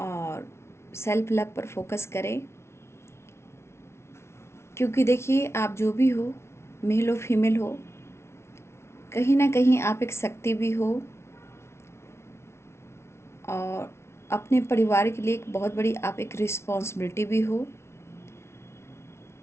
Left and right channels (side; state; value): right; late; 0.13 ms